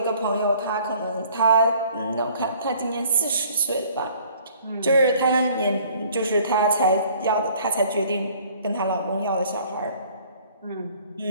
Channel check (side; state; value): both; inverted; correlation -0.55